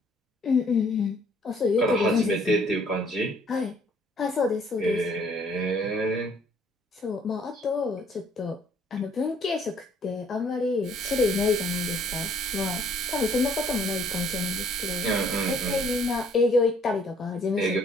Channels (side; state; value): both; normal; correlation 0.61